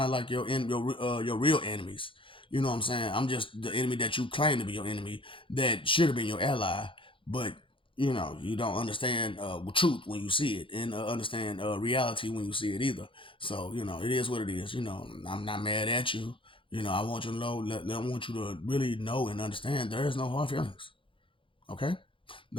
like your real enemies. You know what I'm saying? I'm just the enemy that you claim to be your enemy that should have been your ally, but you know, you don't understand truth when you see it, and understand reality when you see it either. So you know, it is what it is. You know, I'm not mad at you. You know, I want you to know. I want you to really know and understand. There is no hard feelings. Okay.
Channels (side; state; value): right; late; 0.25 ms